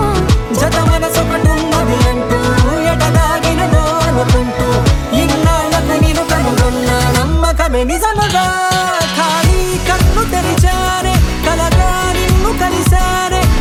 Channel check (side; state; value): both; identical; correlation 1.00